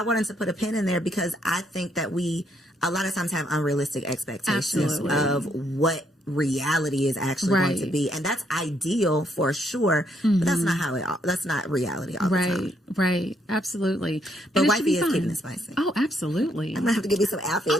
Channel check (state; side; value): normal; both; correlation 0.73